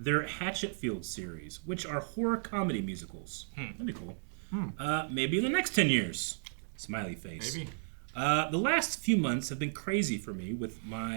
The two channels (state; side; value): silent; left; digital silence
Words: Hatchetfield series, which are horror comedy musicals. That'd be cool. Maybe in the next 10 years. Smiley face. Maybe. The last few months have been crazy for me with